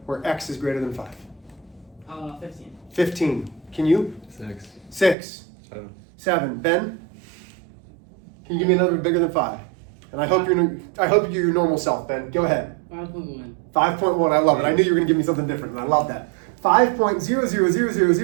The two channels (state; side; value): drops out; left; at 5.2 s